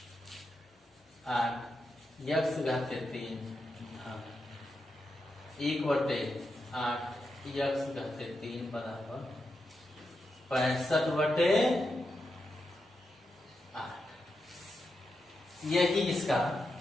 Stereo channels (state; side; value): normal; both; correlation 0.86